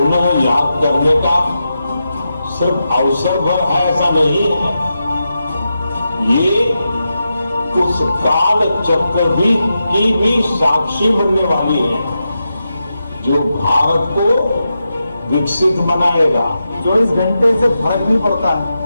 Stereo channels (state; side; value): inverted; both; correlation -0.88